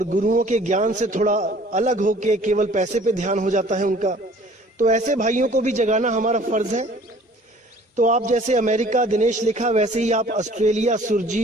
गुरुओं के ज्ञान से थोड़ा अलग होके केवल पैसे पे ध्यान हो जाता है उनका। तो ऐसे भाइयों को भी जगाना हमारा फर्ज है। तो आप जैसे अमेरिका दिनेश लिखा, वैसे ही आप ऑस्ट्रेलिया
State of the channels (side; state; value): both; normal; correlation 0.52